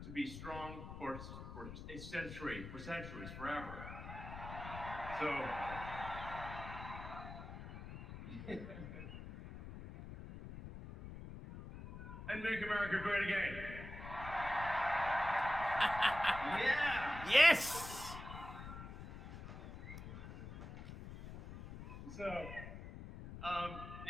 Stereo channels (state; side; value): noise; left; rumble, 10 dB below the sound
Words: to be strong for a century, for centuries, forever. So, and make America great again. Yeah. Yes. So,